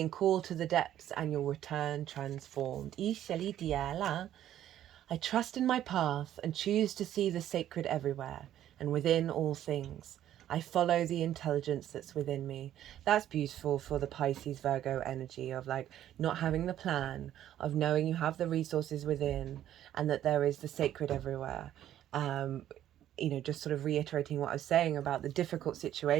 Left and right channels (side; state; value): left; quieter; 11.8 dB